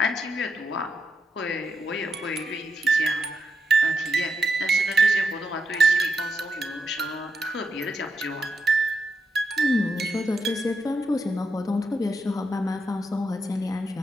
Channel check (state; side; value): normal; both; correlation 0.84